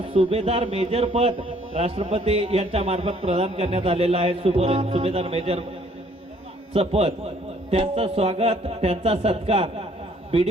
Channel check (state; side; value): normal; both; correlation 0.61